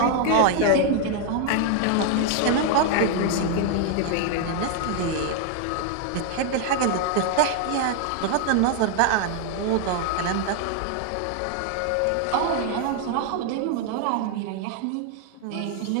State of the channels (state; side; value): different; both; correlation 0.00